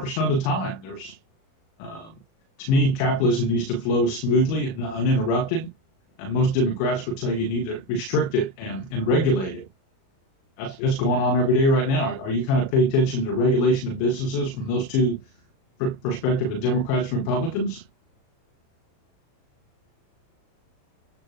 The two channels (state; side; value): late; right; 37 ms